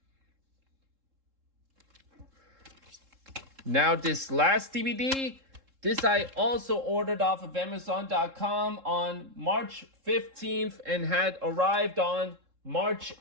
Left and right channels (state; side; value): late; left; 3.7 ms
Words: Now this last DVD, this I also ordered off of Amazon.com on March 15th and had arrived on March